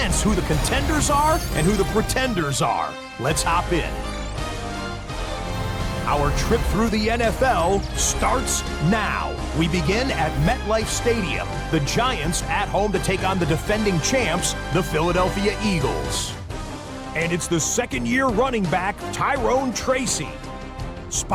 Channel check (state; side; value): identical; both; correlation 1.00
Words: who the contenders are and who the pretenders are. Let's hop in. Our trip through the NFL starts now. We begin at MetLife Stadium. The Giants at home to take on the defending champs, the Philadelphia Eagles. And it's the 2nd-year running back, Tyrone Tracy.